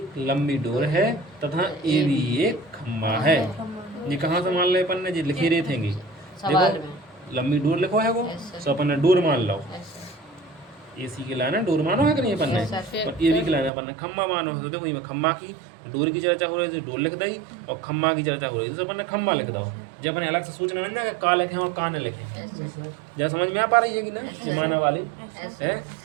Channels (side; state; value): left; drops out; at 13.7 s